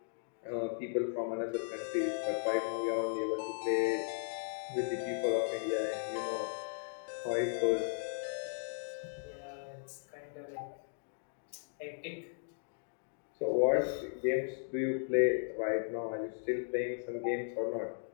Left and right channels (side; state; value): right; silent; digital silence